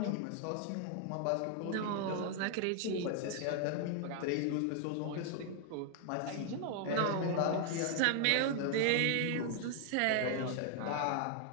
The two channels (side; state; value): both; different; correlation 0.00